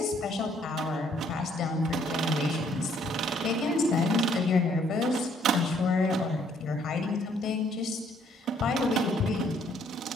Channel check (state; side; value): normal; both; correlation 0.66